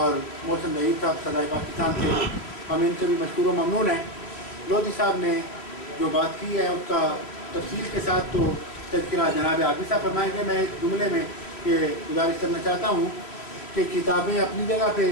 محسن ظہیر صاحب صدائے پاکستان سے، ہم ان سے بھی مشکور و ممنون ہیں۔ لودھی صاحب نے جو بات کی ہے اس کا تفصیل کے ساتھ تو تذکرہ جناب عابد صاحب فرمائیں گے۔ میں ایک جملے میں یہ گزارش کرنا چاہتا ہوں کہ کتابیں اپنی جگہ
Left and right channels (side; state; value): right; late; 3.1 ms